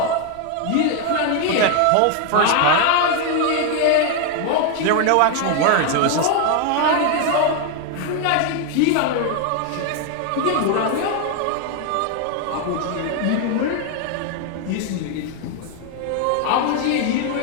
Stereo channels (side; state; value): both; different; correlation 0.01